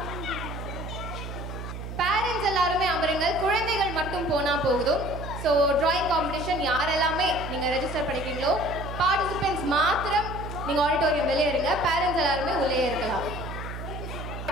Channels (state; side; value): noise; right; hum, 8 dB below the sound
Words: பேரண்ட்ஸ் எல்லாருமே அமருங்கள், குழந்தைகள் மட்டும் போனா போகுதும். ஸோ டிராயிங் காம்படிஷன் யாரெல்லாமே நீங்க ரெஜிஸ்டர் பண்ணிக்கிறீங்களோ பார்ட்டிசிபென்ட்ஸ் மாத்திரம் நீங்க ஆடிட்டோரியம் வெளியே இருங்க, பேரண்ட்ஸ் எல்லாருமே உள்ளே இருக்கலாம்.